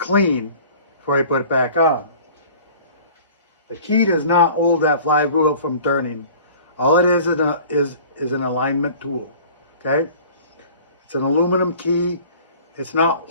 before you put it back on. The key does not hold that flywheel from turning. All it is an alignment tool. Okay? It's an aluminum key. It's not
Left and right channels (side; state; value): both; inverted; correlation -0.46